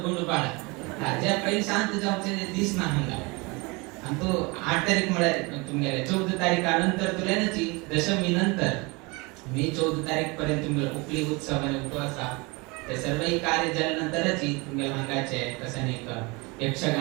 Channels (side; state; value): left; quieter; 26.8 dB